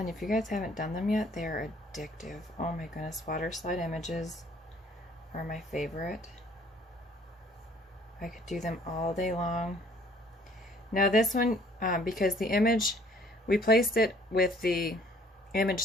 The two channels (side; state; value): both; normal; correlation 0.58